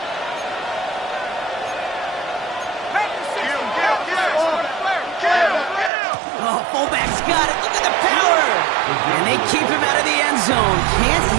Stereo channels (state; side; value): drops out; left; at 5.9 s